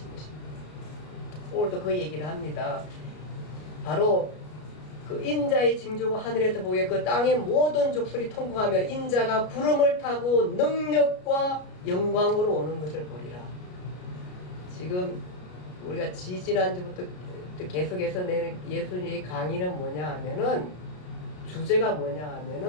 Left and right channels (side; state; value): right; late; 33 ms